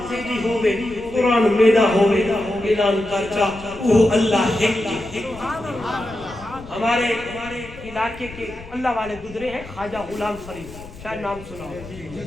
تیری ہوئے قرآن میرا ہوئے اعلان کرچا وہ اللہ ہے ہمارے علاقے کے اللہ والے گزرے ہیں خواجہ غلام فرید شاید نام سنا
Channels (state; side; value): noise; left; rumble, 17 dB below the sound